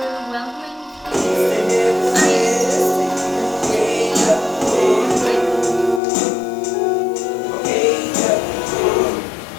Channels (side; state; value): right; drops out; at 6.0 s